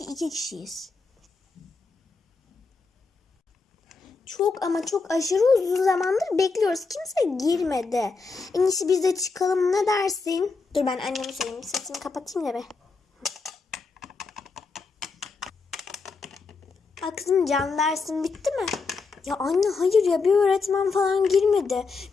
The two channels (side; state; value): right; quieter; 4.4 dB